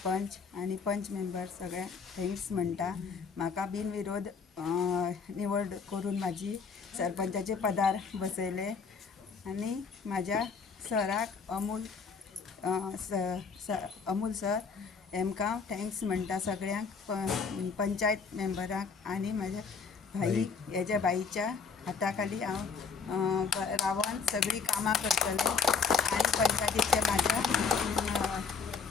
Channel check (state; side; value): quieter; right; 5.4 dB